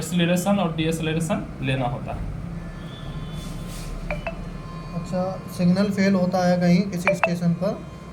और डीएक्सीलरेशन लेना होता है। अच्छा, सिग्नल फेल होता है कहीं किसी स्टेशन पर,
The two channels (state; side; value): identical; both; correlation 1.00